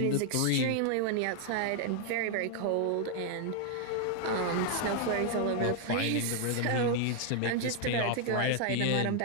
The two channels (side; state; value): both; different; correlation 0.00